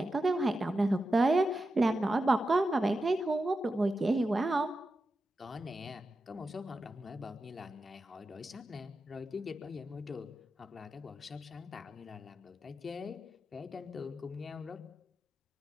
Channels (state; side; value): normal; both; correlation 0.90